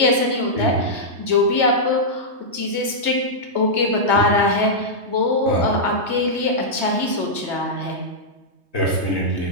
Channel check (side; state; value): left; late; 3.2 ms